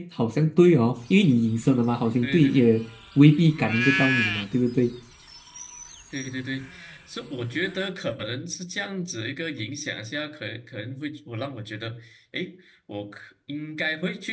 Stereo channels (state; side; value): identical; both; correlation 1.00